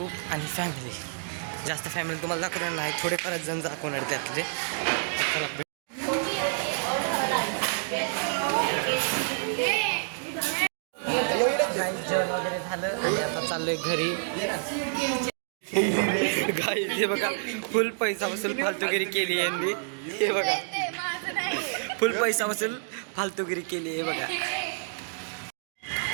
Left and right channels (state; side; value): silent; left; digital silence